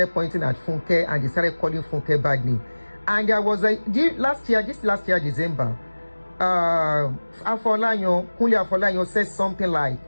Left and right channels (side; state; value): both; inverted; correlation -1.00